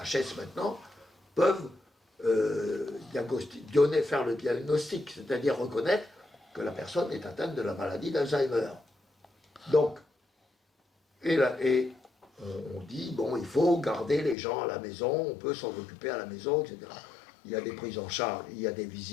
maintenant, peuvent faire le diagnostic, c'est-à-dire reconnaître que la personne est atteinte de la maladie d'Alzheimer. Donc, on dit, bon, il faut garder les gens à la maison, on peut s'en occuper à la maison, etc. Il y a des prises en charge, il y a des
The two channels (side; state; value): right; drops out; at 14.4 s